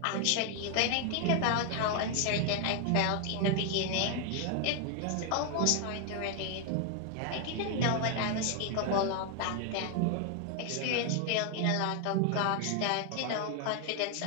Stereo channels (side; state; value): both; different; correlation 0.00